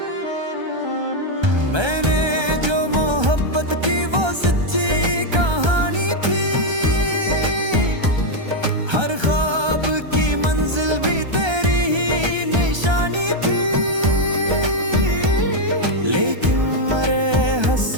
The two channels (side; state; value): left; late; 1.3 ms